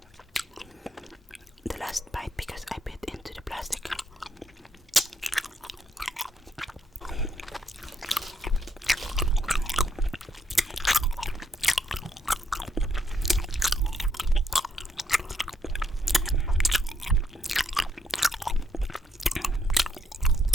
The last bite because I bit into the plastic.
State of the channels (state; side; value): normal; both; correlation 0.76